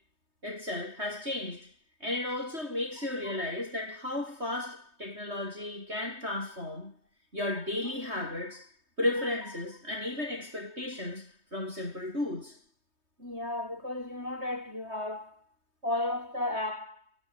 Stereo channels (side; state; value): left; late; 3.2 ms